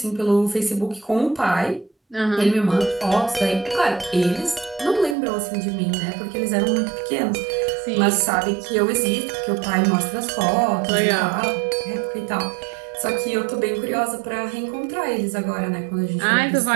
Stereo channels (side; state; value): left; drops out; at 5.2 s